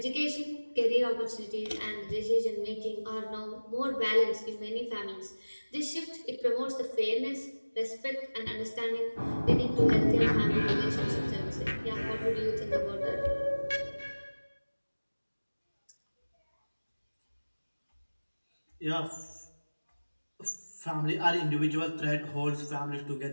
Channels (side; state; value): both; inverted; correlation -1.00